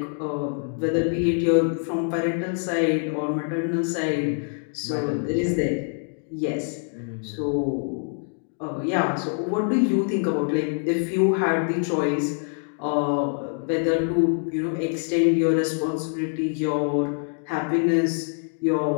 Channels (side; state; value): right; silent; 55 dB below the other